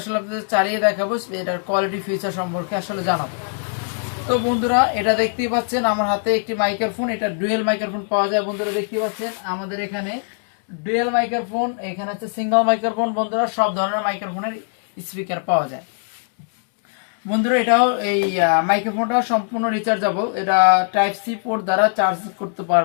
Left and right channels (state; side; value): silent; right; 65 dB below the other